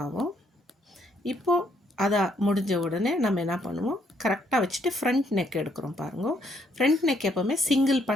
ஆகும். இப்போது அதை முடிஞ்ச உடனே நம்ம என்ன பண்ணுவோம், கரெக்டாக வச்சுட்டு ஃப்ரண்ட் நெக் எடுக்கிறோம். பாருங்க, ஃப்ரண்ட் நெக் எப்போவுமே சிங்கிள்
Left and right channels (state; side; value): normal; both; correlation 0.71